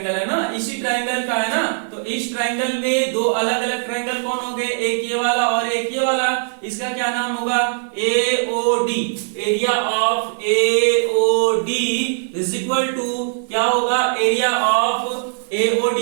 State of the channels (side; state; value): left; silent; 56 dB below the other